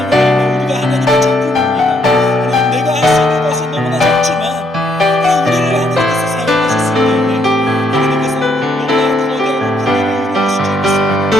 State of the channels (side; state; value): both; normal; correlation 0.73